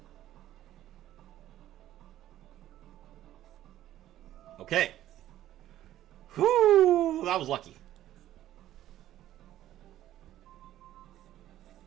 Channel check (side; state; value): left; quieter; 13.1 dB